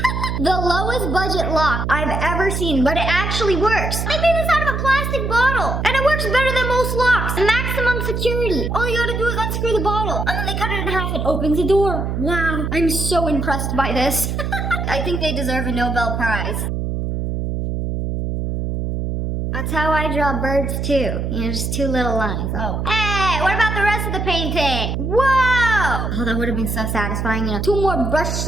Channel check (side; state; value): right; noise; hum, 2 dB below the sound